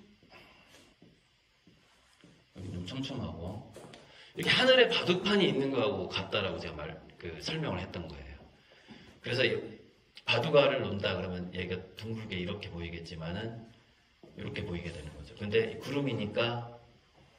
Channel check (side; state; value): both; identical; correlation 1.00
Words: 여기 좀 촘촘하고 이렇게 하늘에 바둑판이 있는 거하고 같다라고 제가 설명을 했던 거예요. 그래서 바둑알을 놓는다 그러면 얘가 둥글게 이렇게 보이겠지만은 이렇게 보이게 되는 거죠. 근데 구름이니까